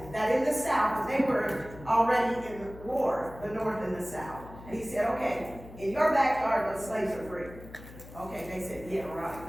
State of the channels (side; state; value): left; noise; hum, 16 dB below the sound